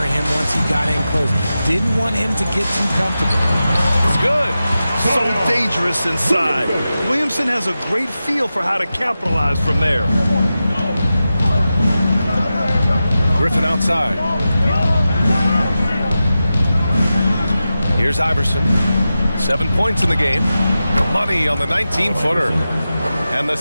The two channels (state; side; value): inverted; both; correlation -0.93